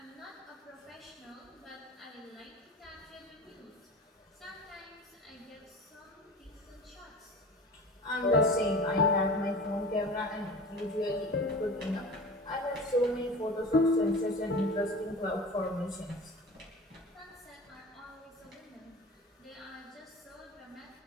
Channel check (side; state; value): both; normal; correlation 0.36